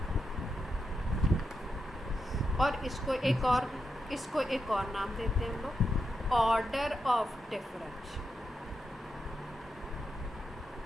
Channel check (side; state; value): both; normal; correlation 0.86